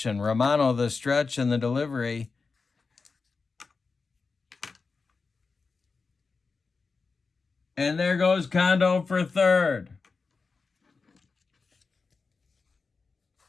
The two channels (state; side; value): quieter; right; 4.5 dB